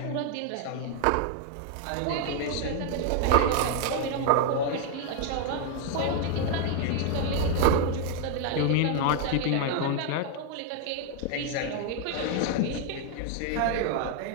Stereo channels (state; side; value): different; both; correlation 0.00